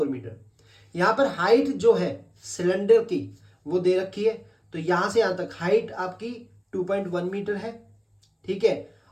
metre. यहां पर हाइट जो है सिलेंडर की वो दे रखी है, तो यहां से यहां तक हाइट आपकी 2.1 मीटर है। ठीक है,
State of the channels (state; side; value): identical; both; correlation 1.00